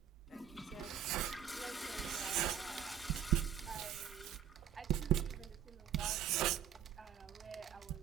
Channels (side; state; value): left; quieter; 9.5 dB